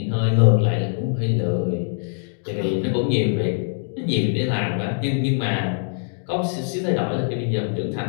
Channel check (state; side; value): silent; right; digital silence